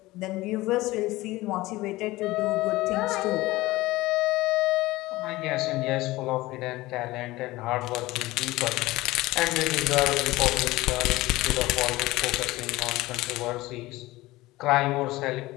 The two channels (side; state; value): right; quieter; 19.0 dB